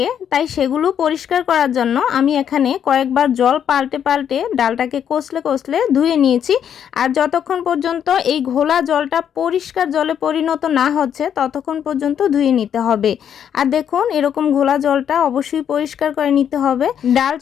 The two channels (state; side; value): quieter; right; 8.9 dB